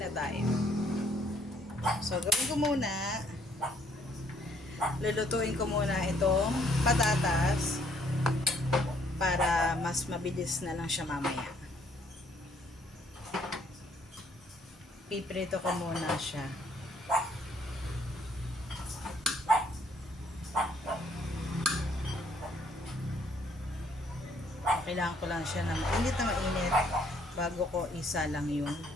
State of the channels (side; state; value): both; normal; correlation 0.65